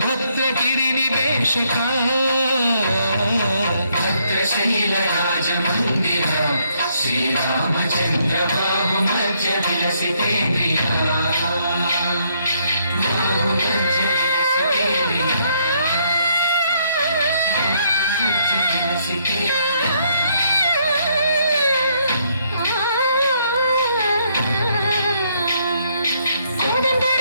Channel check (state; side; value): inverted; both; correlation -0.71